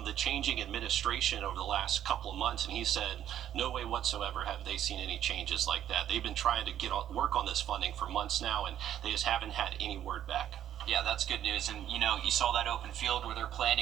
the changing administration over the last couple of months, and he said no way whatsoever have they seen any changes like that. They've been trying to work on this funding for months now, and they just haven't had any word back. Yeah, that's good news. And, you know, you saw that open field where they're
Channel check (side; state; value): left; quieter; 10.9 dB